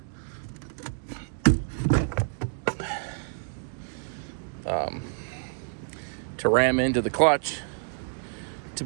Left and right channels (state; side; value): silent; left; digital silence